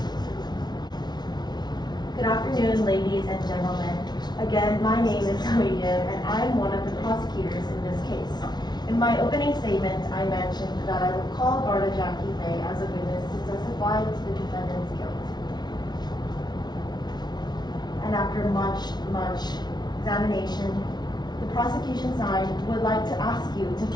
Good afternoon, ladies and gentlemen. Again, my name is William, and I am one of the prosecutors in this case. In my opening statement, I mentioned that I will call Garda Jackie Fay as a witness to testify to the defendant's guilt. And after much examination, the prosecution side would like to ask you to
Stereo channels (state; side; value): late; right; 0.20 ms